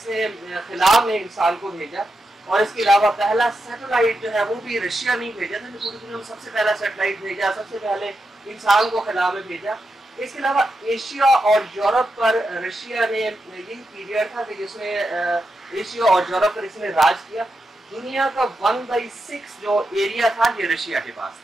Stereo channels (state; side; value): normal; both; correlation 0.87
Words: खिला में इंसान को भेजा। और इसके अलावा पहला सैटेलाइट जो है वो भी रशिया नहीं भेजा था, पूरी दुनिया में सबसे पहला सैटेलाइट भेजा, सबसे पहले इंसान को खिला में भेजा। इसके अलावा एशिया और यूरोप पर रशिया ने यही पीरियड था कि जिसमें एशिया और यूरोप पर इसने राज किया। दुनिया का 1/6 जो एरिया था ये रशिया के पास